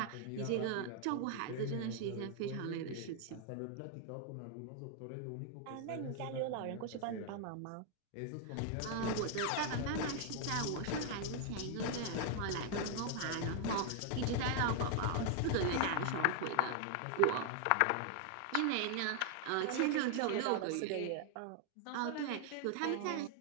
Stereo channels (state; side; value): different; both; correlation 0.00